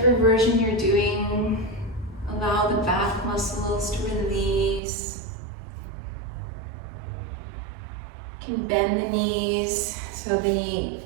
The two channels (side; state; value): left; drops out; at 4.8 s